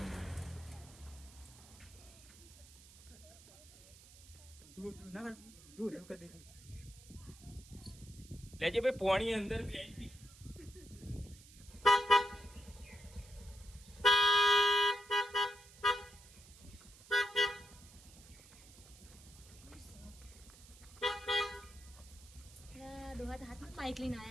લેજે ભાઈ પોણી અંદર બેસી. ડોહા તો હાથમાં બાઈક લઈને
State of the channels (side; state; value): right; noise; hiss, 21 dB below the sound